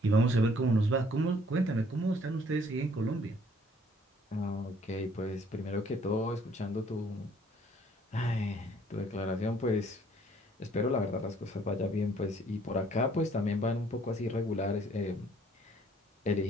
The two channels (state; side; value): normal; both; correlation 0.61